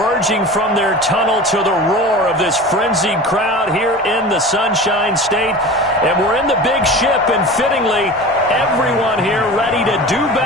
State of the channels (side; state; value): both; normal; correlation 0.35